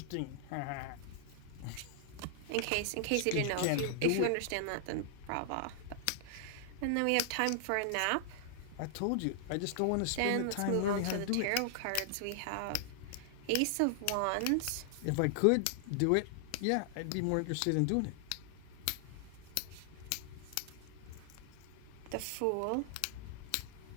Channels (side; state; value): both; different; correlation 0.00